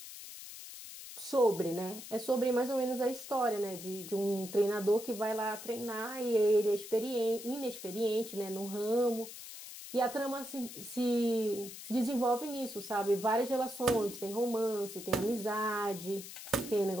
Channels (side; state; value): left; noise; hiss, 12 dB below the sound